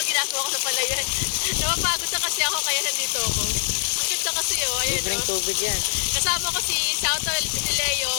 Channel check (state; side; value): silent; right; digital silence